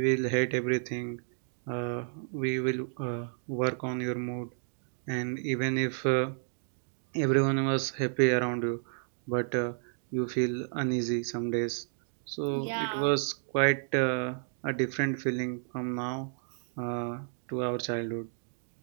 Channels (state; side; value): silent; left; digital silence